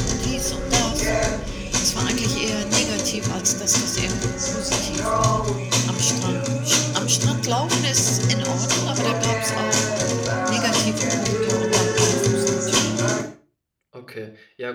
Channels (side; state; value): both; identical; correlation 1.00